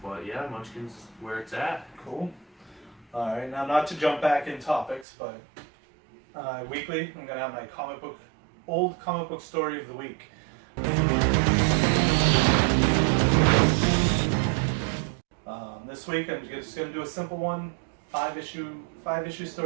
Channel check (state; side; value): drops out; left; at 5.1 s